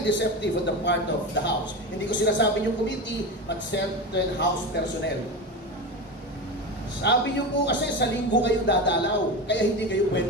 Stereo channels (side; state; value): both; normal; correlation 0.22